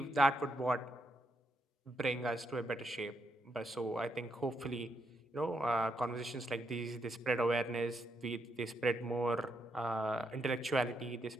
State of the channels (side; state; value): both; normal; correlation 0.79